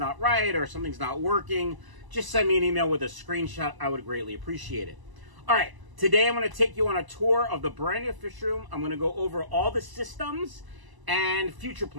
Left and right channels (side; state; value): left; late; 1.0 ms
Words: right or something's not working, just send me an email with a screenshot. I would greatly appreciate it. All right. Today, I'm going to take you on a tour of the brand new fish room. I'm going to go over all the systems and future